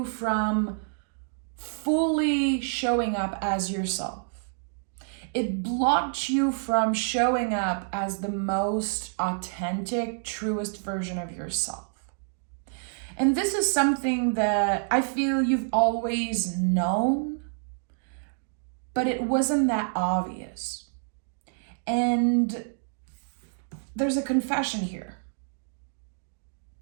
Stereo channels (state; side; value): silent; left; digital silence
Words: from fully showing up as yourself. It blocked you from showing up as the most authentic, truest version of yourself. And this is something that I feel you've always known, but it wasn't that obvious. And there's a confession here.